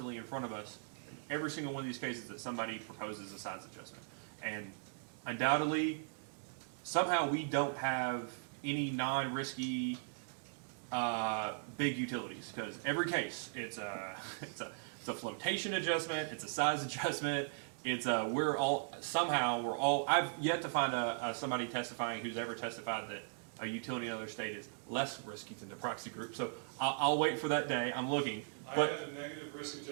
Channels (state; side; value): silent; left; digital silence